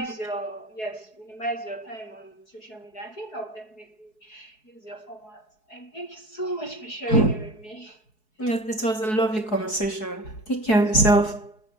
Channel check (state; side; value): late; right; 4.7 ms